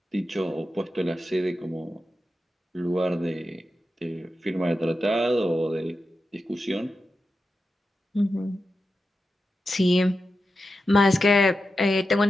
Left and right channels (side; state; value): both; normal; correlation 0.90